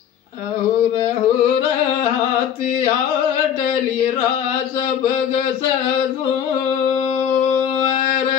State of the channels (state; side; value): quieter; right; 9.0 dB